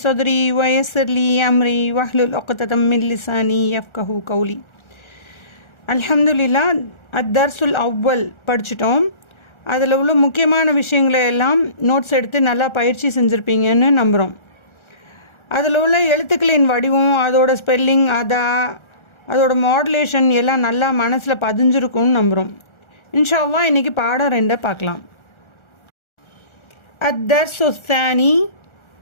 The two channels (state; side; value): late; right; 1.4 ms